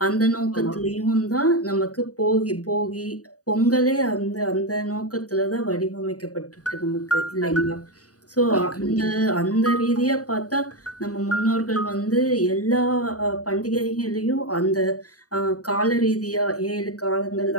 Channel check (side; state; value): right; late; 0.67 ms